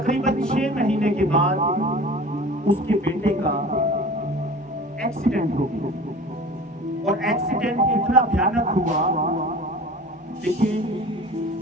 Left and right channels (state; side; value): normal; both; correlation 0.39